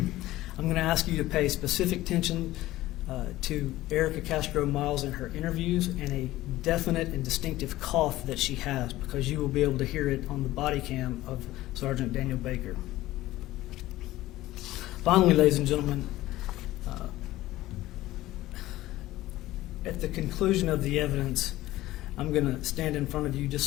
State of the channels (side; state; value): right; quieter; 16.4 dB